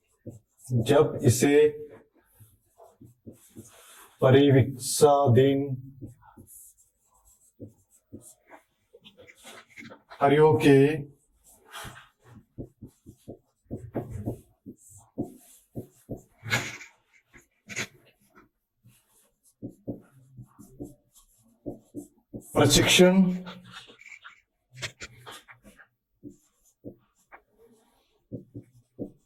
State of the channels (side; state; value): both; identical; correlation 1.00